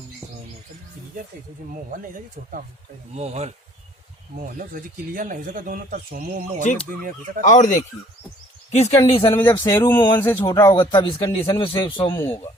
मोहन नहीं था छोटा मोहन मोहन है क्लियर नहीं हो सका दोनों तरफ सोमो मोहन ठीक। दुनिया हो सका। और देखिए किस कंडीशन में, जब शेरू मोहन से छोटा होगा तब इस कंडीशन में सोमू होगा।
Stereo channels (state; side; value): normal; both; correlation 0.56